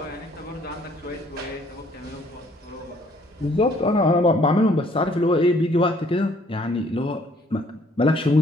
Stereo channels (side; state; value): both; normal; correlation 0.62